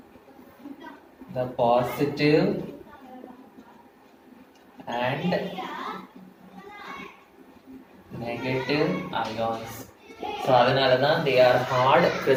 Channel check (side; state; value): both; identical; correlation 1.00